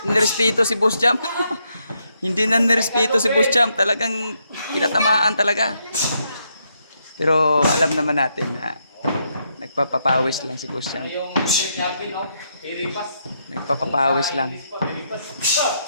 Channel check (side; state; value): both; inverted; correlation -0.78